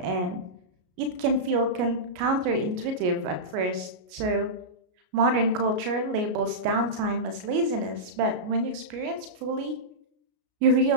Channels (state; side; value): late; left; 33 ms